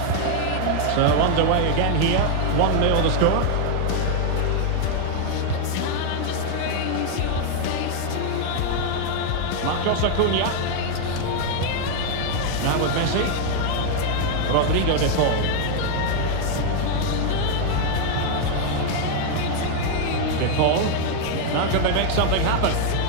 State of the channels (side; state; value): both; different; correlation 0.00